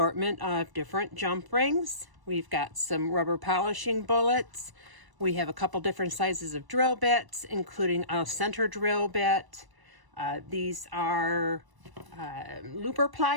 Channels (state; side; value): late; left; 1.0 ms